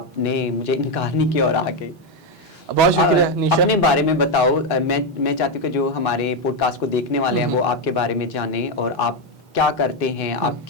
نے مجھے انکار نہیں کیا اور آگے. بہت شکریہ نیشا. اپنے بارے میں بتاؤ. میں چاہتی ہوں کہ جو ہمارے پوڈ کاسٹ کو دیکھنے والے ہیں وہ آپ کے بارے میں جانیں اور آپ کیا کرتے ہیں، آپ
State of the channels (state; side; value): normal; both; correlation 0.06